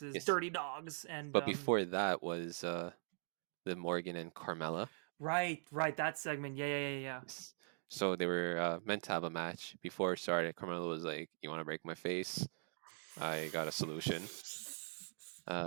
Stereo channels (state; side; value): silent; left; digital silence